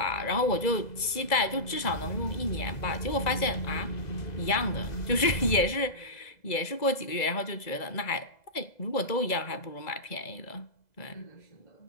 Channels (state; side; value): late; right; 2.0 ms